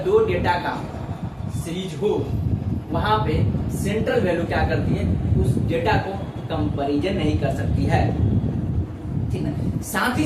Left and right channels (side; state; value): both; identical; correlation 1.00